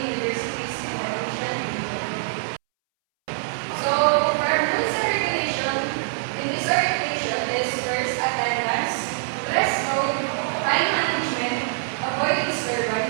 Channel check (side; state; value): left; silent; 62 dB below the other